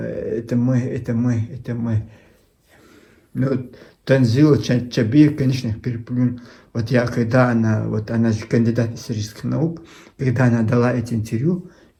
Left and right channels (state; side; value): identical; both; correlation 1.00